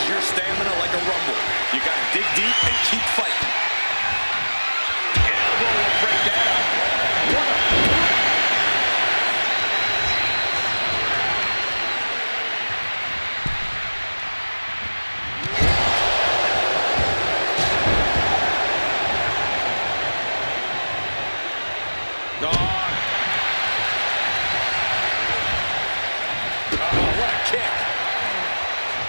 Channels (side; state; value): both; inverted; correlation -1.00